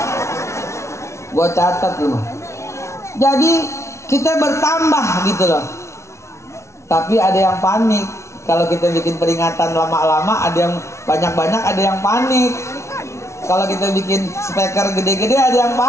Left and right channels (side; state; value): right; late; 0.13 ms